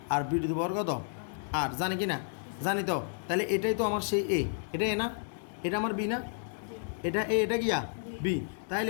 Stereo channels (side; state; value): right; silent; digital silence